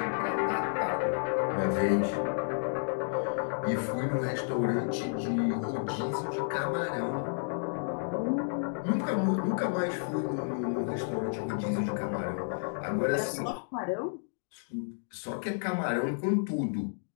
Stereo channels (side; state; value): right; silent; digital silence